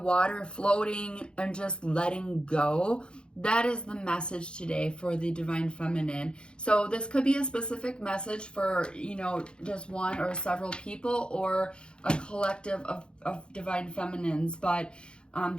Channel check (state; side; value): late; right; 0.052 ms